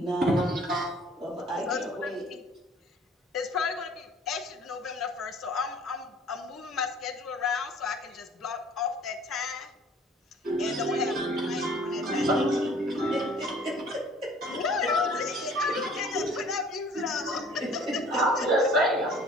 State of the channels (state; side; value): normal; both; correlation 0.52